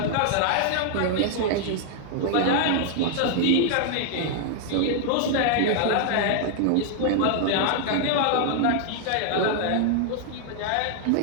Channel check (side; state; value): both; different; correlation 0.00